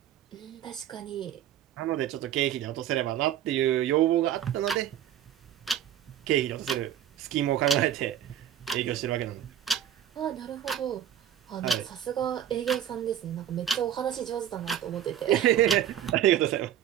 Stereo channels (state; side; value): quieter; left; 10.5 dB